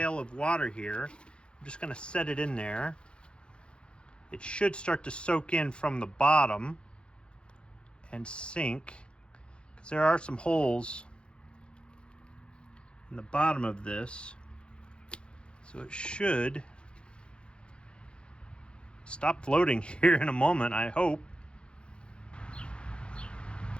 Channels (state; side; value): late; right; 0.055 ms